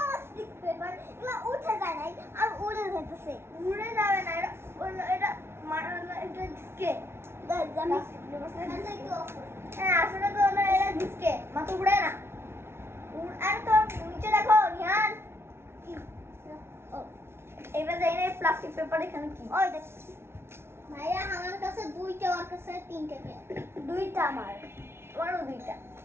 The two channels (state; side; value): late; left; 0.12 ms